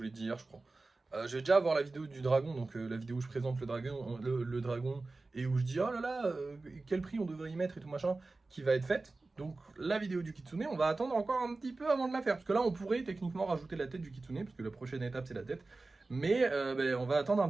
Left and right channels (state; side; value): quieter; left; 3.4 dB